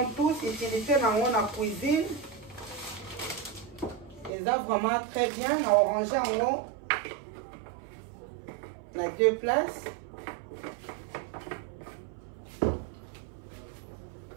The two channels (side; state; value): left; drops out; at 4.3 s